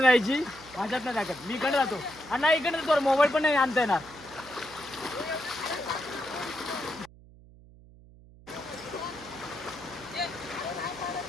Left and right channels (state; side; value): noise; right; hum, 22 dB below the sound